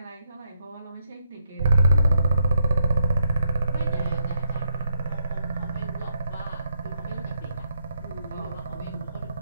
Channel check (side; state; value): both; inverted; correlation -0.78